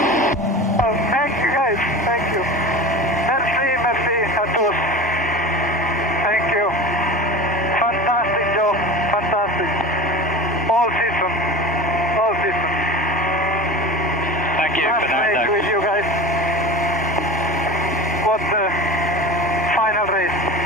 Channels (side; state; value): both; normal; correlation 0.32